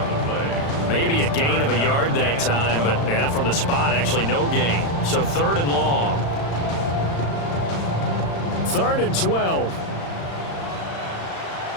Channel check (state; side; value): late; right; 35 ms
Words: the play. Maybe a gain of a yard that time, but yeah, from the spot, actually no gain. So 3rd and long. 3rd and 12.